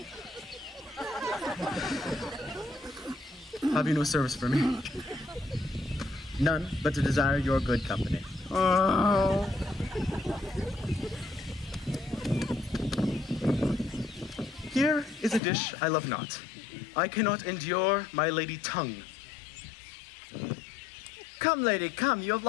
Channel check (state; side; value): drops out; right; at 15.4 s